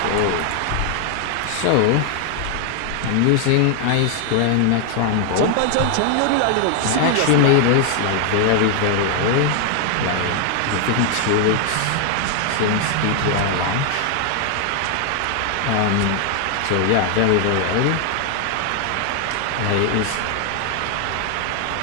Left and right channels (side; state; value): both; different; correlation 0.00